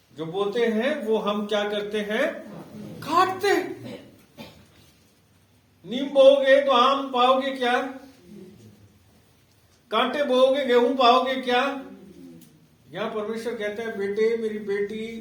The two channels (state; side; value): identical; both; correlation 1.00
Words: जो बोते हैं वो हम क्या करते हैं? काटते। नीम बोओगे तो आम पाओगे क्या? कांटे बोओगे गेहूं पाओगे क्या? यहां परमेश्वर कहता है, बेटे मेरी बेटी,